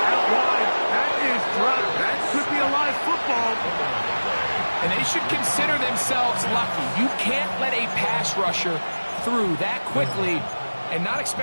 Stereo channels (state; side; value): inverted; both; correlation -1.00